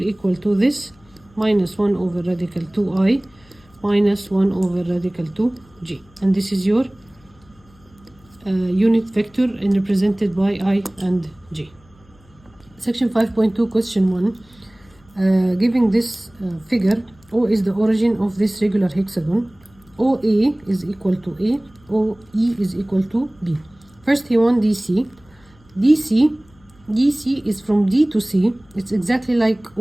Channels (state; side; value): noise; left; hum, 29 dB below the sound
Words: equal to this, minus 1 over radical 2I minus 1 over radical 2J. And this is your unit vector and represented by I and J. Section 5.2, question 1. Giving this figure, O is the origin of this regular hexagon. OA is equal to A, OE is equal to B. First he wants DC. DC is from D to C. It's exactly like